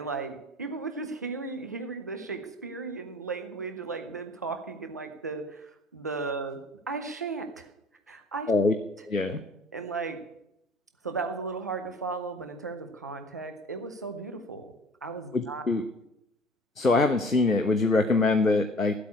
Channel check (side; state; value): both; normal; correlation 0.48